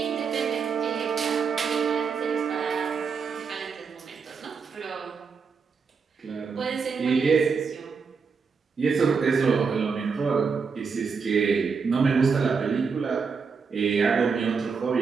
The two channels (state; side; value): quieter; left; 5.5 dB